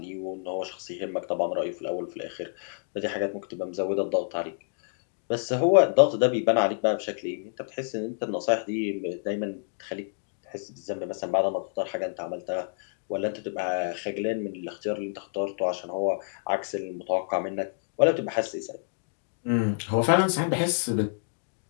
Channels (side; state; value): right; silent; digital silence